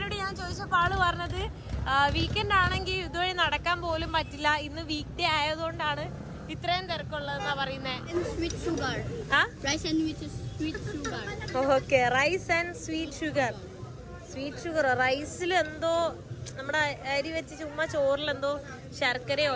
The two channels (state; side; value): identical; both; correlation 1.00